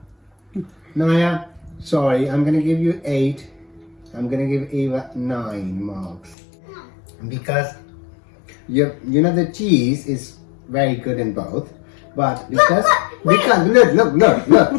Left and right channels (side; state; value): right; drops out; at 6.4 s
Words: Naya, sorry, I'm gonna give you 8. I'm gonna give Ava 9 marks because you know the cheese is very good in both, but because